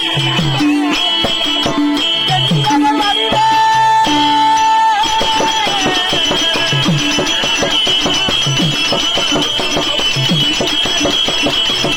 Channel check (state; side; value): identical; both; correlation 1.00